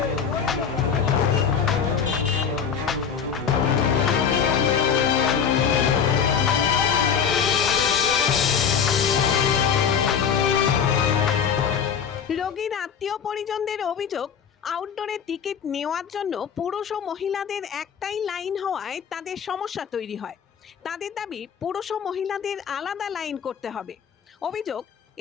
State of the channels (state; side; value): quieter; right; 7.3 dB